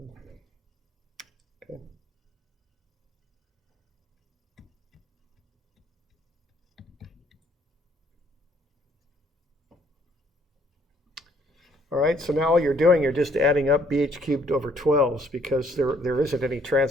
Okay. All right, so now all you're doing, you're just adding up bh cubed over 12s because there isn't any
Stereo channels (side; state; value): both; normal; correlation 0.64